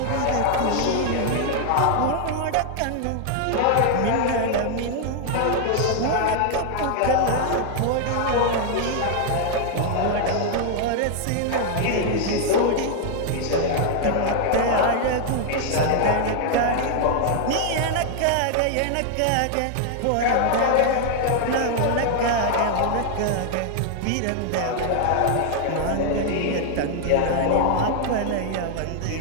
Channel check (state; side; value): different; both; correlation 0.00